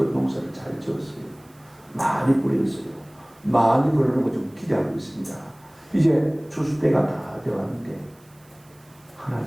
농사를 잘 지었어요. 많이 뿌렸어요. 많이 그러는 거 좀 기대하고 있습니다. 이제 추수 때가 다 되었는데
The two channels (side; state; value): right; noise; hiss, 29 dB below the sound